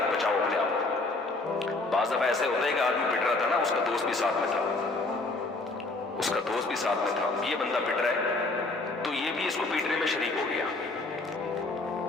بچاؤ اپنے آپ کو۔ بعض دفعہ ایسے ہوتا ہے کہ آدمی پٹ رہا تھا نا، اس کا دوست بھی ساتھ میں تھا، اس کا دوست بھی ساتھ میں تھا، یہ بندہ پٹ رہا ہے تو یہ بھی اس کو پیٹنے میں شریک ہو گیا۔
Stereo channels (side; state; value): right; quieter; 3.2 dB